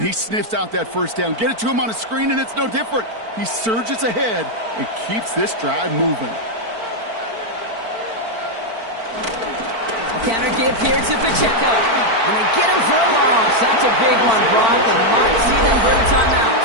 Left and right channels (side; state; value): left; late; 4.5 ms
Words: sniffs out that 1st down. Get it to him on a screen, and it's no different. He surges ahead and keeps this drive moving. Counter give here to Pacheco. And they get him for a loss. That's a big one, Brock, and might see them burn a timeout.